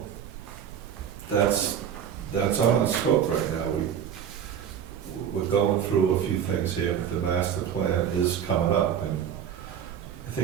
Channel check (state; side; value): quieter; left; 8.8 dB